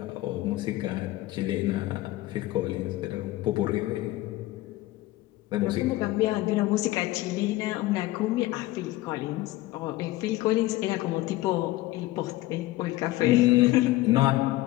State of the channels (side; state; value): right; quieter; 17.3 dB